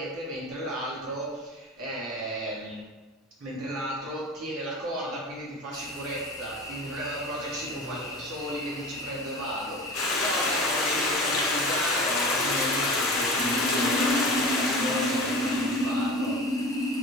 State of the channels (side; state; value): both; normal; correlation 0.34